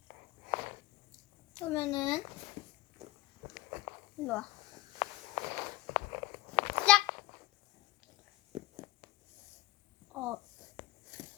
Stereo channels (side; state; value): right; quieter; 18.9 dB